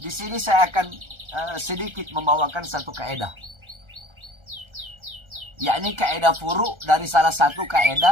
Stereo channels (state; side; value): late; left; 1.3 ms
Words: sini saya akan sedikit membawakan satu kaedah. Yakni kaedah furu dari salah satu